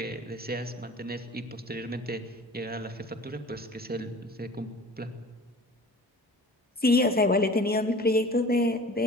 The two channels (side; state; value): both; normal; correlation 0.43